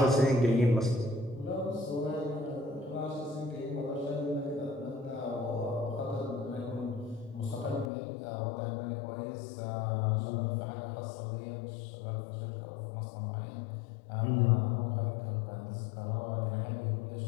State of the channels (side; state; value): right; drops out; at 7.9 s